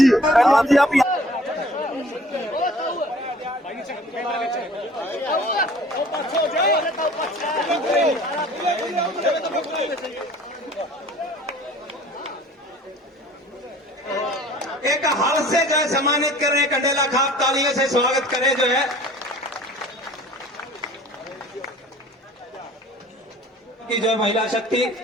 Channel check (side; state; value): both; normal; correlation 0.49